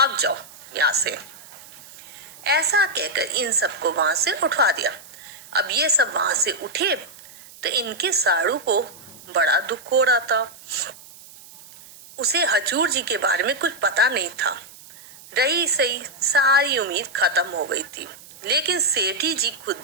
जाओ यहाँ से। ऐसा कहकर इन सबको वहां से उठवा दिया। अब ये सब वहां से उठे तो इनके साड़ू को बड़ा दुख हो रहा था। उसे हजूर जी के बारे में कुछ पता नहीं था। रही सही सारी उम्मीद खत्म हो गई थी। लेकिन सेठी जी खुद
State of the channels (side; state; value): right; noise; hiss, 20 dB below the sound